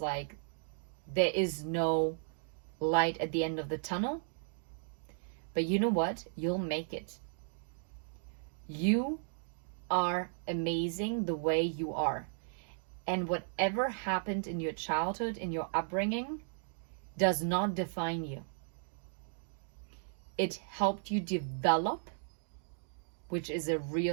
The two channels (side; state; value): left; silent; digital silence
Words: there is no light at the end of the tunnel. But you know what? You'll make it. You are amazing the way you are. And whatever happened in your childhood, in your upbringing, does not define you. It helped you develop, which is a